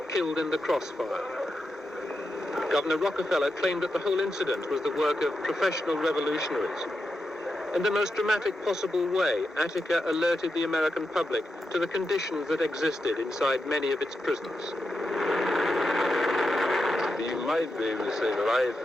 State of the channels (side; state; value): both; normal; correlation 0.87